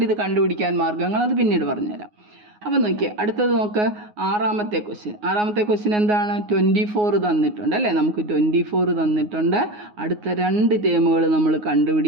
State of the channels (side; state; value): left; late; 9.5 ms